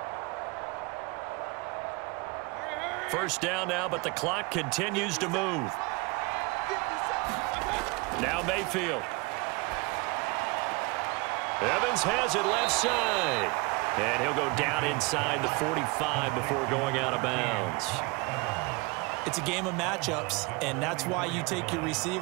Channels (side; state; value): left; quieter; 27.1 dB